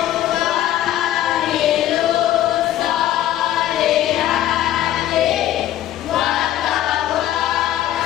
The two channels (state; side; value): quieter; right; 12.7 dB